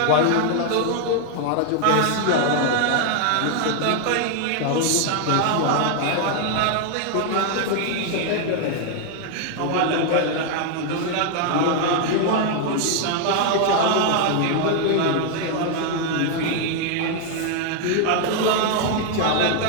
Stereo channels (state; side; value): different; both; correlation 0.00